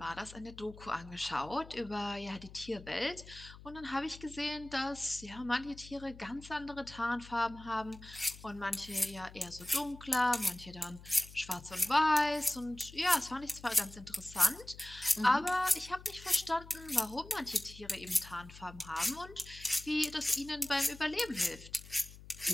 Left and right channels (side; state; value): left; noise; hum, 17 dB below the sound